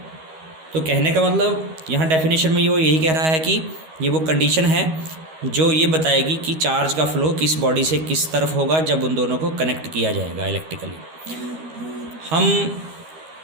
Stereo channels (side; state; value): left; late; 13 ms